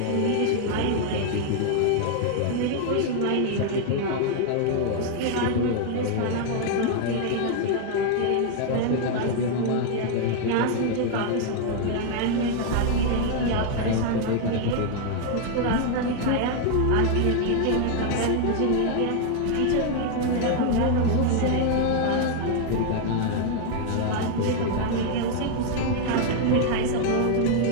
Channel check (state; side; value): different; both; correlation 0.00